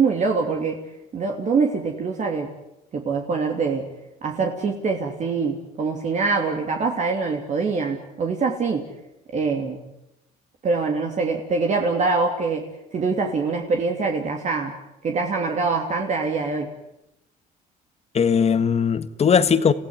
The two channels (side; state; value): both; normal; correlation 0.43